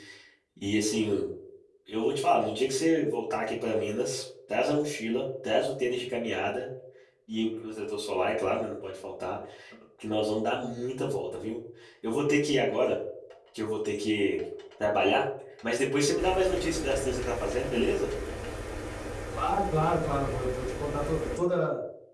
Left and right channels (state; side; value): identical; both; correlation 1.00